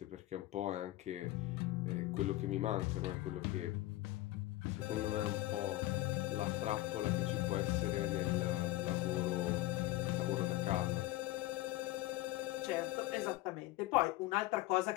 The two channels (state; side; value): quieter; right; 17.4 dB